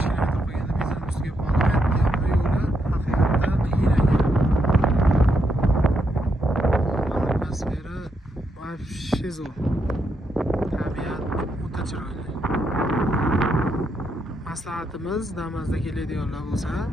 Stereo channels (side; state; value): both; normal; correlation 0.79